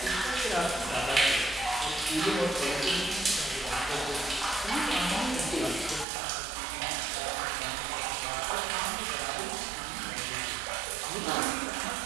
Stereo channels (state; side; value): drops out; left; at 6.1 s